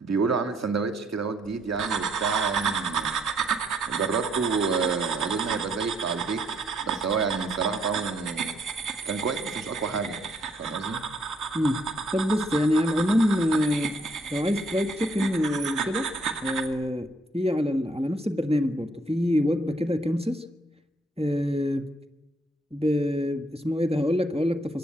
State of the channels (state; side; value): normal; both; correlation 0.69